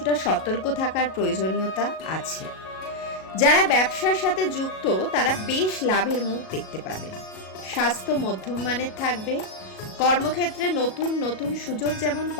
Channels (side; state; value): right; late; 37 ms